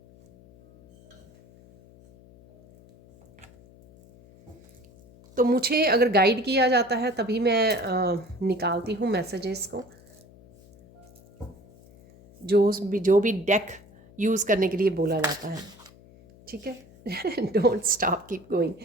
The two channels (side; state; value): left; noise; hum, 25 dB below the sound